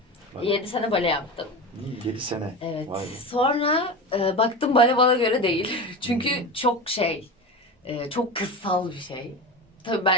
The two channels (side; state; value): both; normal; correlation 0.26